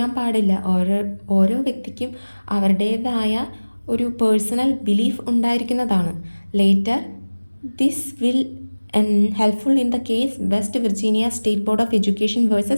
പാടില്ല, ഓരോ വ്യക്തിക്കും അവരുടേതായ ഒരു പേഴ്സണൽ ബിലീഫ് ഉണ്ടായിരിക്കുന്നതാണ്. Later this will helpful in the case West Virginia State Board of Education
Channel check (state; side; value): inverted; both; correlation -1.00